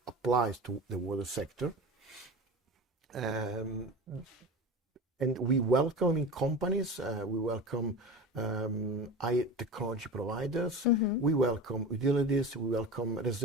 applies to the water sector. And we welcome companies, we welcome high technology providers, we welcome utilities, we welcome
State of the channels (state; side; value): normal; both; correlation 0.31